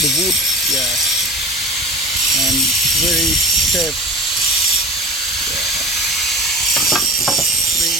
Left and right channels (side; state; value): both; normal; correlation 0.36